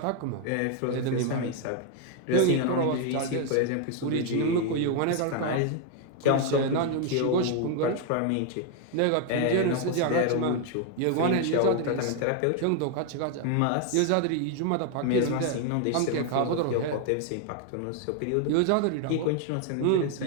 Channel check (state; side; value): different; both; correlation 0.01